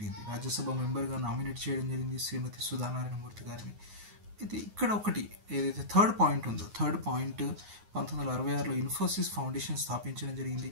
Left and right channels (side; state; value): left; late; 9.5 ms